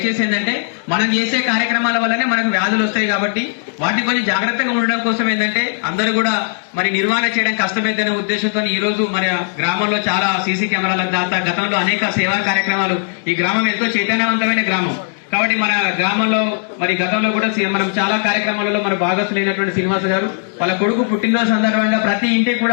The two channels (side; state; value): right; silent; digital silence